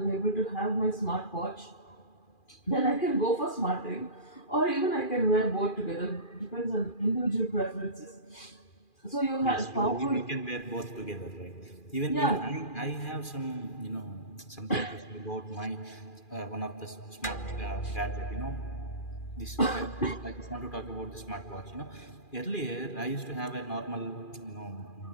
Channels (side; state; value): right; late; 2.4 ms